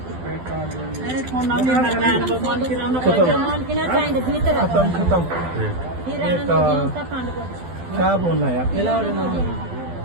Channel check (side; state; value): left; late; 12 ms